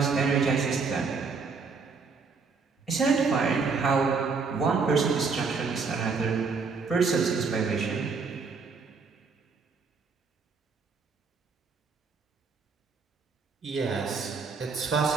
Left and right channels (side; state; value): left; quieter; 4.9 dB